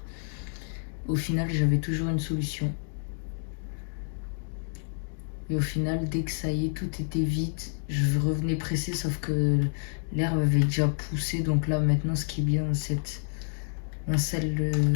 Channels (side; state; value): right; silent; 59 dB below the other